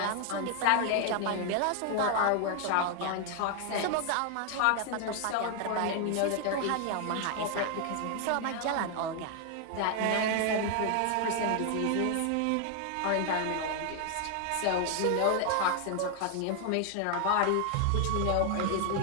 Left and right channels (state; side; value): different; both; correlation 0.00